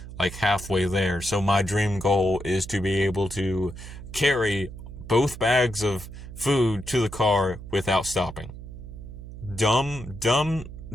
halfway there. So my dream goal is to be able to carry both bags of food to the car without stopping. Dumb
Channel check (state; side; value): noise; right; hum, 12 dB below the sound